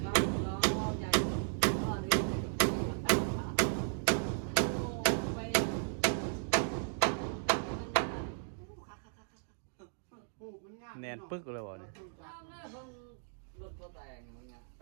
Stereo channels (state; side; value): silent; left; digital silence